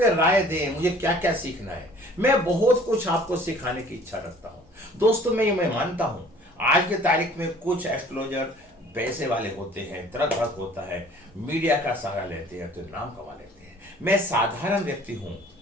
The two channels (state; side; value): normal; both; correlation 0.51